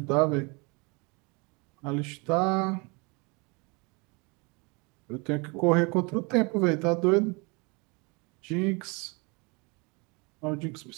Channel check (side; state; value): left; quieter; 29.4 dB